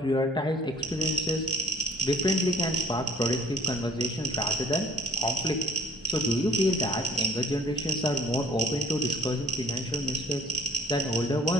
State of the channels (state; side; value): normal; both; correlation 0.56